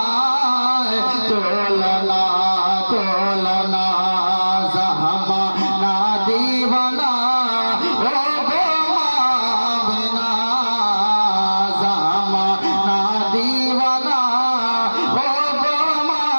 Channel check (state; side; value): inverted; both; correlation -1.00